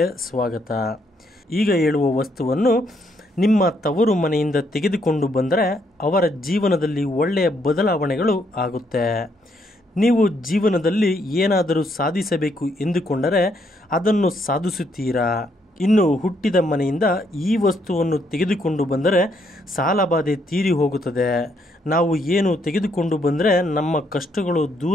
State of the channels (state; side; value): normal; both; correlation 0.73